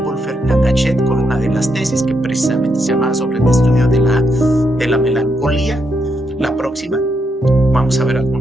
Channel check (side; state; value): both; normal; correlation 0.79